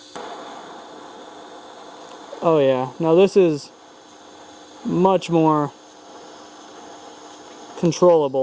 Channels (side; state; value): both; identical; correlation 1.00